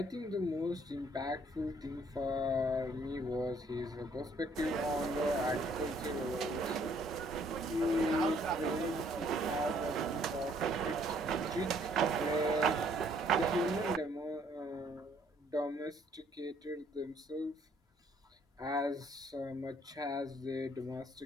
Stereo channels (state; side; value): normal; both; correlation 0.64